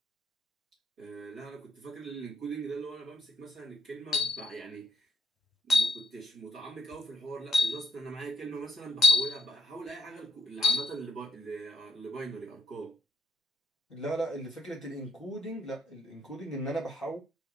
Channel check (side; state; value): both; normal; correlation 0.74